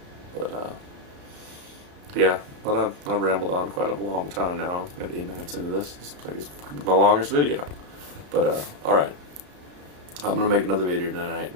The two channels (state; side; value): late; left; 33 ms